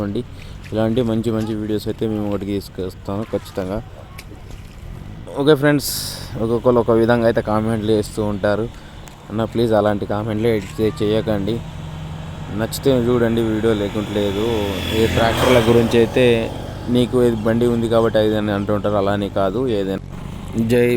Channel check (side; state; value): both; identical; correlation 1.00